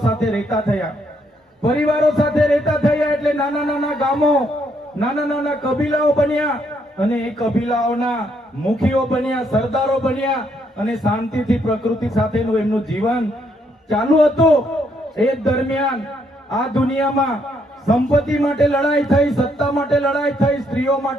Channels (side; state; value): both; normal; correlation 0.73